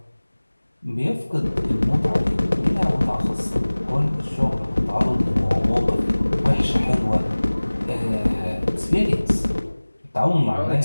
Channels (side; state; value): both; inverted; correlation -1.00